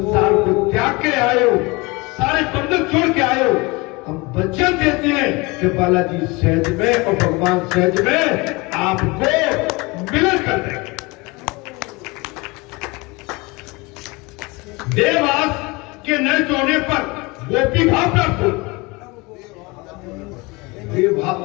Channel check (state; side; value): quieter; right; 25.2 dB